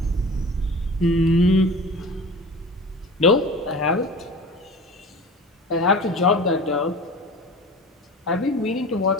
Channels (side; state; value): both; normal; correlation 0.37